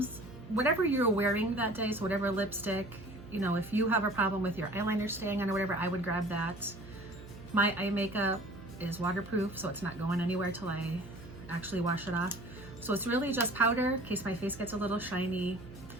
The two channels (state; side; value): noise; right; hum, 16 dB below the sound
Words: whatever you're wearing that day, so whatever lipstick, you know, if you have a problem with your eyeliner staying on or whatever, I would grab that. My eye makeup is waterproof, so it's not going anywhere till I actually wash it off. So it's really just powder in case my face gets a little shiny,